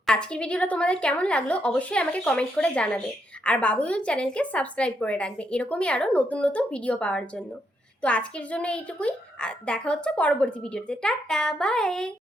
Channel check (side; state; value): both; normal; correlation 0.78